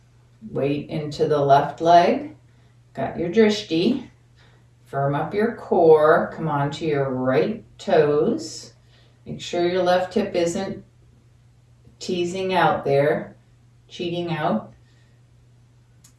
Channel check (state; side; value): identical; both; correlation 1.00